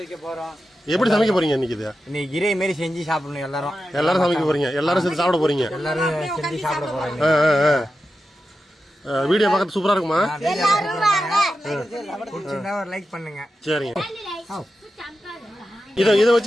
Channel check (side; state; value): both; normal; correlation 0.91